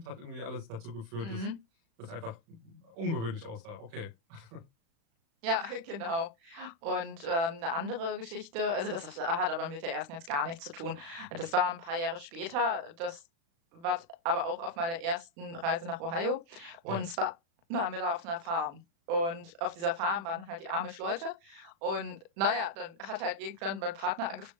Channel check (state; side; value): late; left; 36 ms